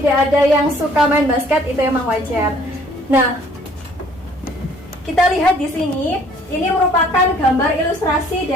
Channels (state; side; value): normal; both; correlation 0.58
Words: ada yang suka main basket itu memang wajar. Nah, kita lihat di sini, ini merupakan gambar ilustrasi